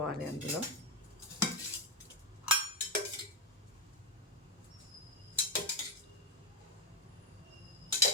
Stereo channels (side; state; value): both; normal; correlation 0.06